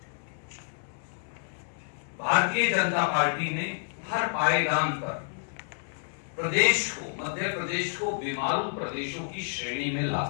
भारतीय जनता पार्टी ने हर पायदान पर प्रदेश को, मध्य प्रदेश को बीमारू प्रदेशों की श्रेणी में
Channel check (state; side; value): silent; right; 58 dB below the other